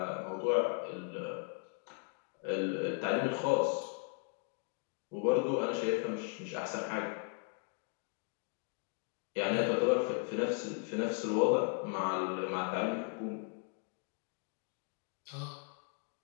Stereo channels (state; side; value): quieter; right; 38.1 dB